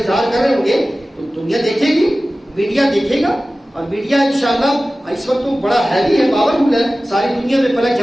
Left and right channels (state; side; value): normal; both; correlation 0.96